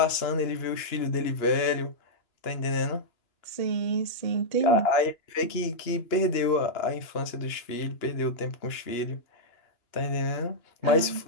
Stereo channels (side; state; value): right; late; 2.9 ms